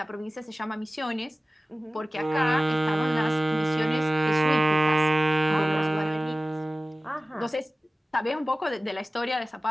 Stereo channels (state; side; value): normal; both; correlation 0.97